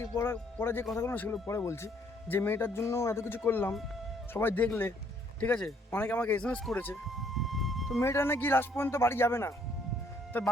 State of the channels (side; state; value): both; normal; correlation 0.65